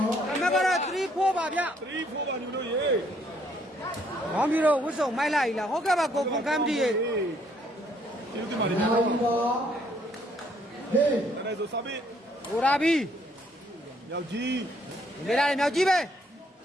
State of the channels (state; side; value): normal; both; correlation 0.67